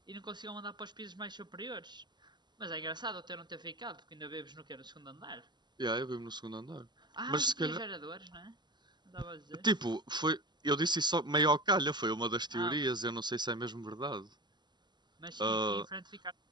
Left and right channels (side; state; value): left; late; 0.21 ms